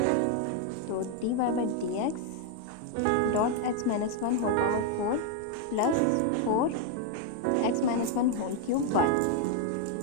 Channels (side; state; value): both; different; correlation 0.00